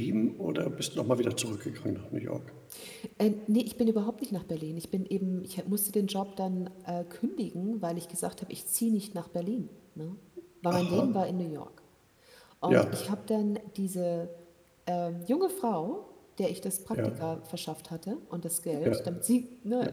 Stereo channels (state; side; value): identical; both; correlation 1.00